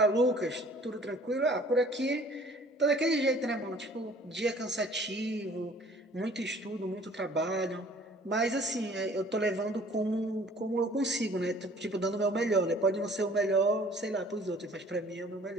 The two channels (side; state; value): both; normal; correlation 0.53